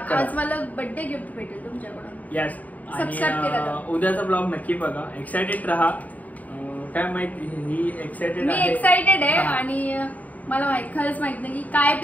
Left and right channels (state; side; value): late; right; 0.075 ms